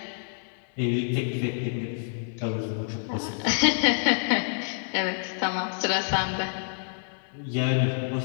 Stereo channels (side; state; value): right; silent; digital silence